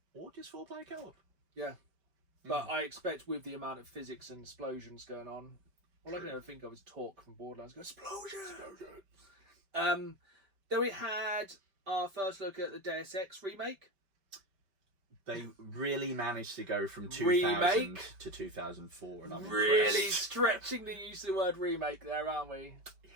Or just 4-player co-op. Yeah. But I expect with the amount of physics and explosions going on, all I can ever think of is Talk from Borderlands going, explosion! Then we had our first look at the Deus Ex remake. They really managed to go from 2000 to 2004, and I'm really impressed. stretching the use of the word remake there, aren't we?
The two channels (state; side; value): late; left; 5.2 ms